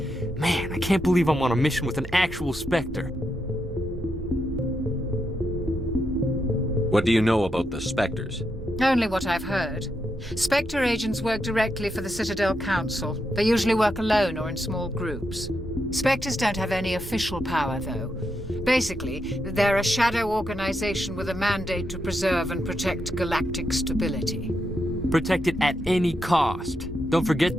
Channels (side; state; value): both; normal; correlation 0.83